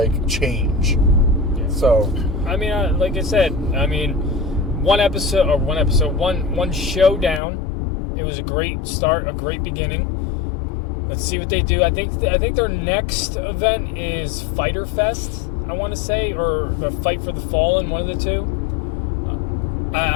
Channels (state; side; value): drops out; right; at 7.4 s